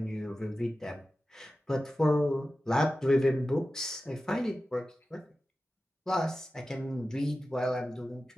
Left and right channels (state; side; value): normal; both; correlation 0.94